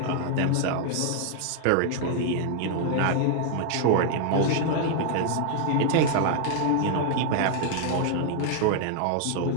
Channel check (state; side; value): different; both; correlation 0.00